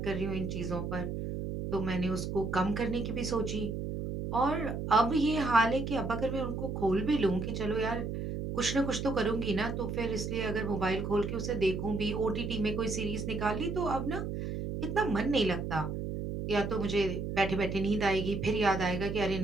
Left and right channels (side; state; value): right; noise; hum, 4 dB below the sound